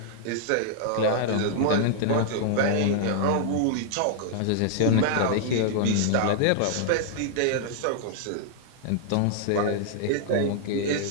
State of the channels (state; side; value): different; both; correlation -0.01